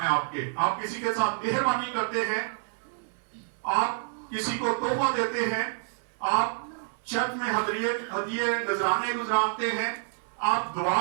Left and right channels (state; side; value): silent; left; 59 dB below the other